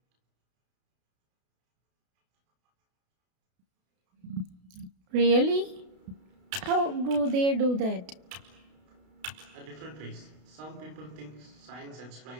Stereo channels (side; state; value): left; late; 32 ms